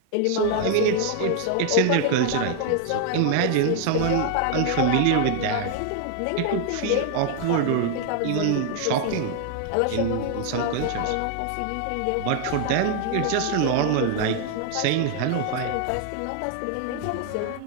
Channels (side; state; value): both; different; correlation 0.00